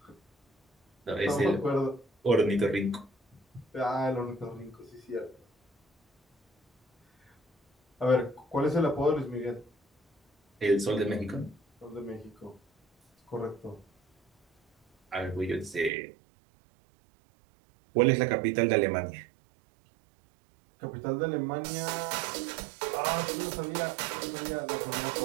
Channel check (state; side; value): drops out; left; at 15.9 s